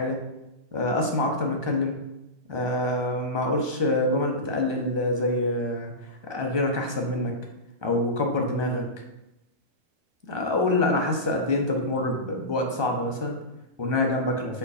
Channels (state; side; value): late; left; 1.2 ms